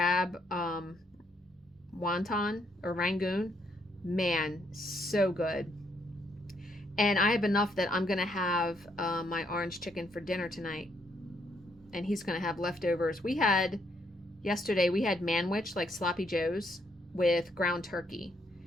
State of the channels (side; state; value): both; normal; correlation 0.73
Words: wonton or rangoon. Man, so good. And I have enough that I'm going to have my orange chicken for dinner tonight. And he's going to have leftovers. Yesterday we had manwich, like sloppy joes, with ground turkey.